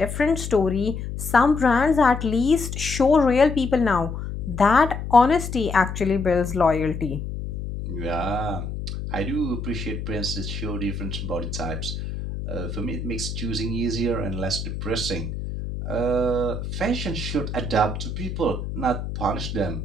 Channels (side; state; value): left; noise; hum, 6 dB below the sound